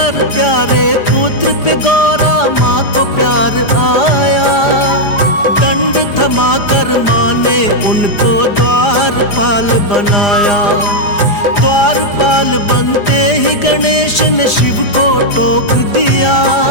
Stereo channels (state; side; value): late; right; 4.9 ms